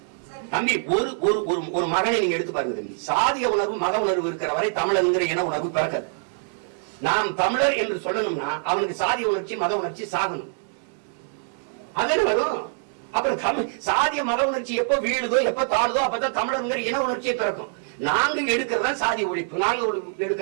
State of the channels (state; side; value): silent; left; digital silence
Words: தம்பி. ஒரு மகனை நீங்க எடுத்து பாருங்க தம்பி. சாதிய உணர்வு மக உணர்வு இருக்கிற வரை தமிழர் இன உணர்வு பிறக்காது. நாம் தமிழர் என்று சொல்லணும்னா அவனுக்கு சாதிய உணர்ச்சி மத உணர்ச்சி சாகணும். அதுன்னு வரும். அப்புறம் சாதிய மத உணர்ச்சி எப்போ வீழுதோ எப்ப தாழுதோ அப்பதான் தமிழர் இன உணர்ச்சியை பிறக்கும். நாங்க எடுக்கிறதா சாதி ஒழிப்பு, நாங்க